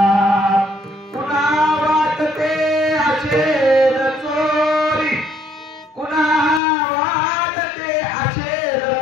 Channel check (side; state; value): right; drops out; at 6.6 s